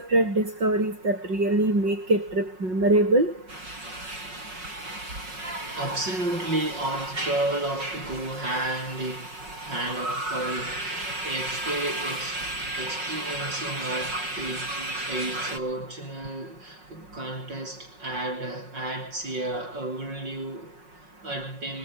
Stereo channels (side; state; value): left; late; 5.5 ms